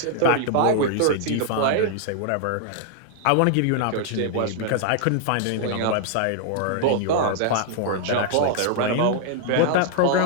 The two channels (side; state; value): both; different; correlation -0.01